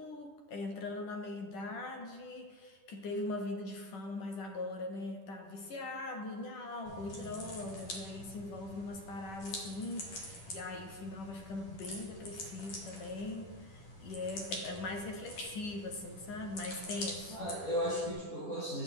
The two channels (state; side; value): late; right; 10 ms